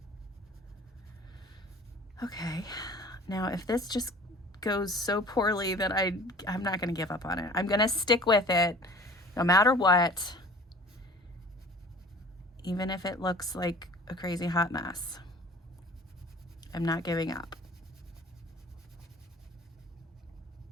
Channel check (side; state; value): both; normal; correlation 0.45